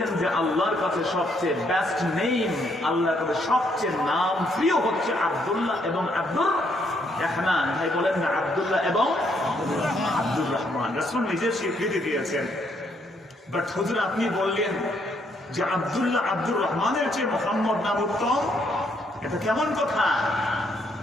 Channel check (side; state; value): both; normal; correlation 0.72